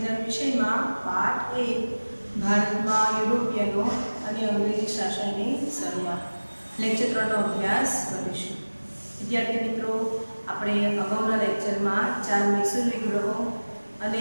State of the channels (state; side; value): inverted; both; correlation -1.00